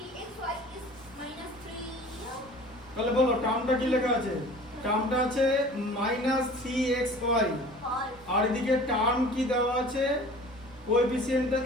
is minus 3 তাহলে বলো টার্মটা কি লেখা আছে টার্মটা আছে -3xy ফল আর এদিকে টার্ম কি দেওয়া আছে কোএফিসিয়েন্টটা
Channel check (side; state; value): both; normal; correlation 0.45